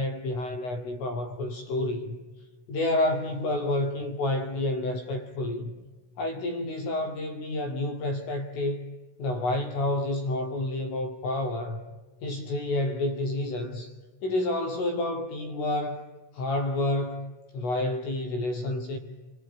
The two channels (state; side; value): late; right; 16 ms